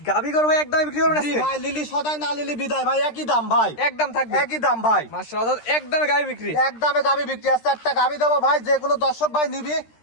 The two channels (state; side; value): late; right; 13 ms